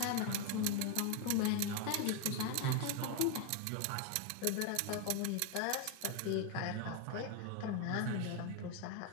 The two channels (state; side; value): different; both; correlation 0.01